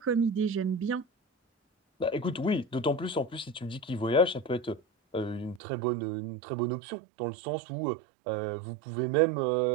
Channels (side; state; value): left; drops out; at 5.6 s